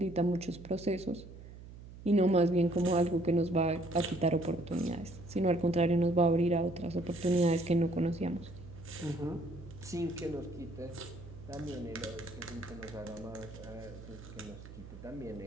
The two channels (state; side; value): noise; right; hum, 16 dB below the sound